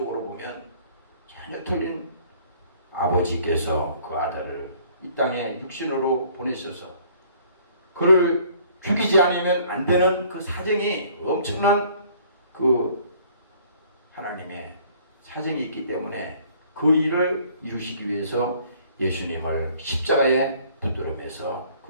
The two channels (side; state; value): both; inverted; correlation -0.57